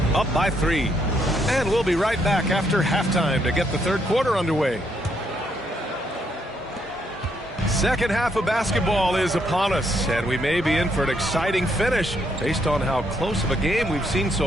up by 3. And we'll be right back after halftime to get the third quarter underway. Second half of basketball is upon us, and we may be in for an exciting finish based on how close of a game we've seen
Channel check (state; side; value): normal; both; correlation 0.74